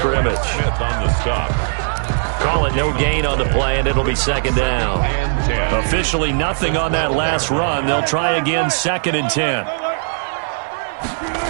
On the stop. Call it no gain on the play, and it'll be 2nd down. Officially nothing on that last run. They'll try again, 2nd and 10.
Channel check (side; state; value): left; silent; digital silence